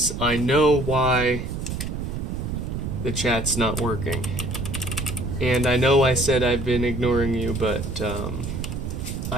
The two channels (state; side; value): noise; right; rumble, 4 dB below the sound